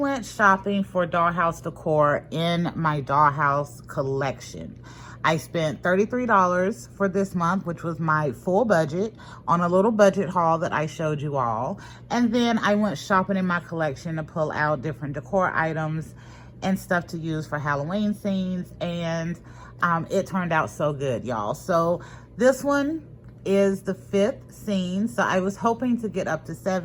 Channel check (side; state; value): both; identical; correlation 1.00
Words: shopping for dollhouse decor in my dollhouse collection. I spent $33 for this month, which was my full budget, on a little budget haul that I showed you all. And then I went shopping in my collection to pull out different decor items and stuff to use for Halloween scenes. And it turned out so good, y'all. So this one is the 5th scene. So I was hoping to get up to